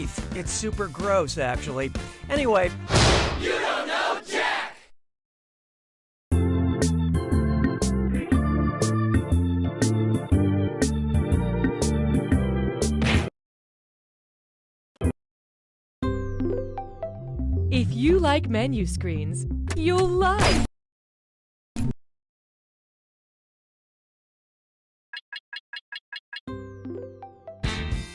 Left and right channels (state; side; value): identical; both; correlation 1.00